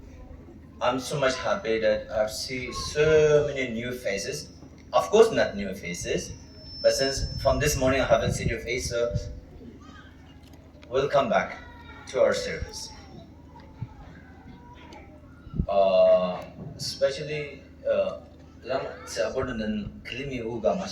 I'm so much happy that I've seen so many new faces. Of course, not new faces, but since from this morning I haven't seen your face, so welcome back to our service. Especially, lang sa abono ng klimi uga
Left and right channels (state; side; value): identical; both; correlation 1.00